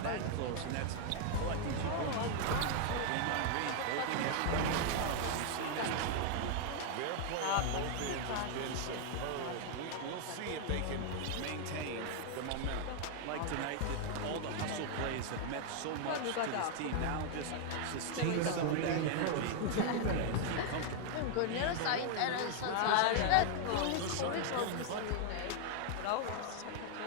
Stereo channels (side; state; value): both; different; correlation 0.00